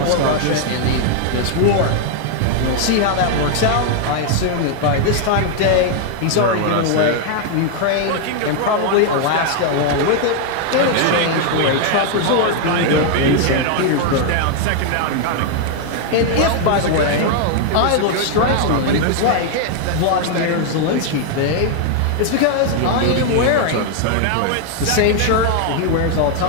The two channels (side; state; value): both; different; correlation 0.00